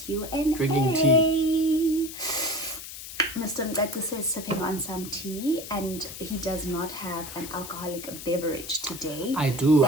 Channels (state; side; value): noise; left; hiss, 11 dB below the sound